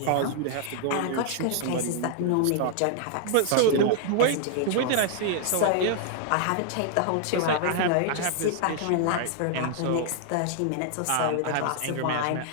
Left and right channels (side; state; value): both; different; correlation 0.00